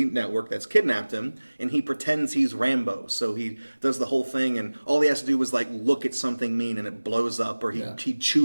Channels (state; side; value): inverted; both; correlation -1.00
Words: network that's kidnapped him, and he pretends he's Rambo. So he does the whole thing, and all he has to do is like look at something mean, and it blows up, or he